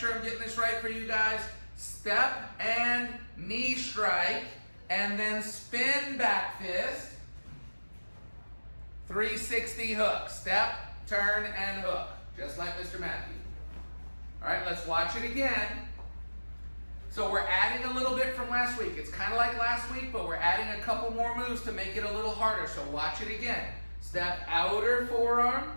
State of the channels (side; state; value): both; inverted; correlation -1.00